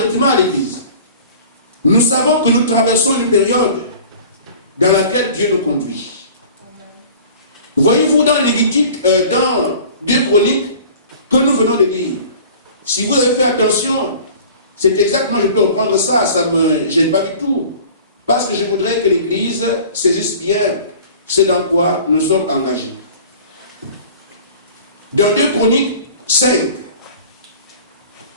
à l'Église. Nous savons que nous traversons une période dans laquelle Dieu nous conduit. Voyez-vous dans Lévitique, dans 2 Chroniques, que nous venons de lire. Si vous avez fait attention, c'est exactement, je peux reprendre ça, ça ne me gêne pas du tout. Parce que je voudrais que l'Église saisisse bien ce dans quoi nous sommes engagés. Dans 2 Chroniques 5.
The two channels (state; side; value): inverted; both; correlation -0.44